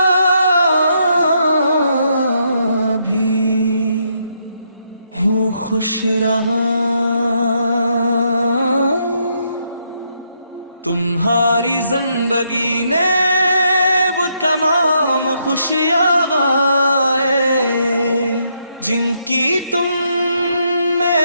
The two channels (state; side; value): inverted; both; correlation -0.76